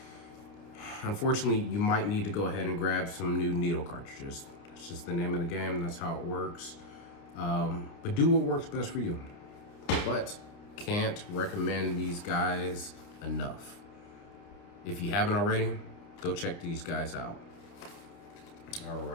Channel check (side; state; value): right; late; 29 ms